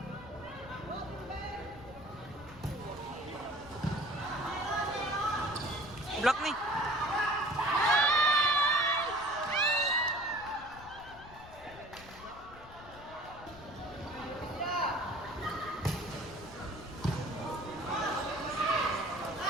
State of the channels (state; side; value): noise; left; rumble, 18 dB below the sound